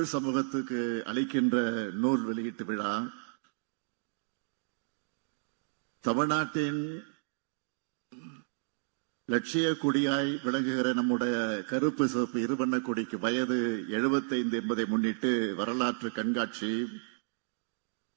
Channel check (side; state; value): left; silent; digital silence